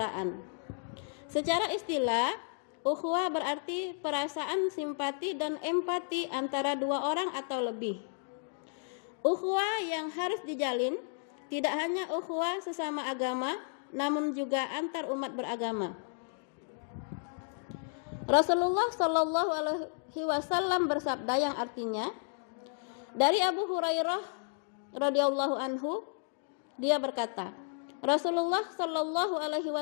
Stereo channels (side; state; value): right; silent; digital silence